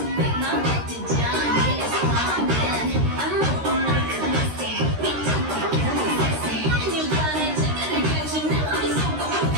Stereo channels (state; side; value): late; left; 13 ms